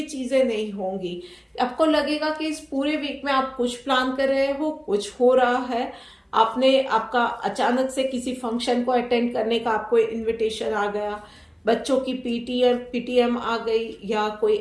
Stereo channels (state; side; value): identical; both; correlation 1.00